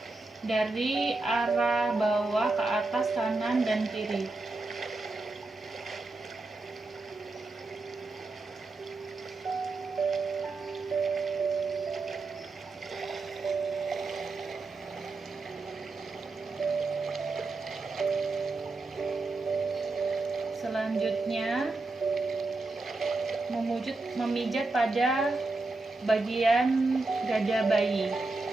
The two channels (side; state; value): left; quieter; 3.3 dB